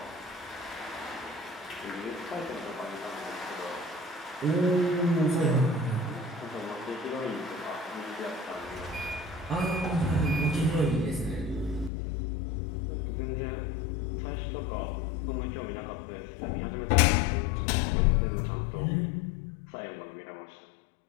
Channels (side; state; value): right; drops out; at 11.9 s